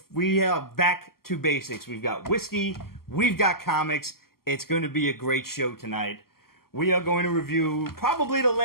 we are back to basics. We've got whiskey, we've got comics. It's going to be a great show tonight. We are going to review probably the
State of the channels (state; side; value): late; right; 0.93 ms